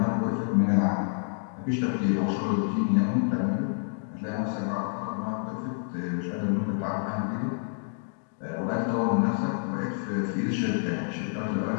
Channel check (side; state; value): right; silent; digital silence